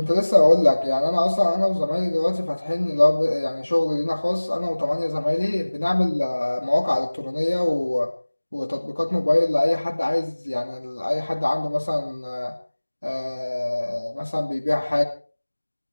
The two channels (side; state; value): both; inverted; correlation -1.00